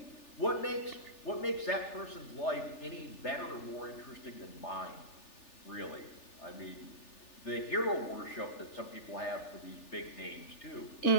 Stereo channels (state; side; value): late; right; 3.4 ms